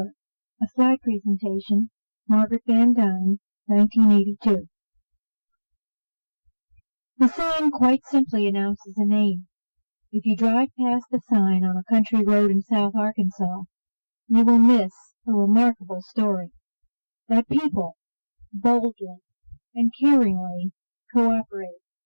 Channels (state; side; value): inverted; both; correlation -1.00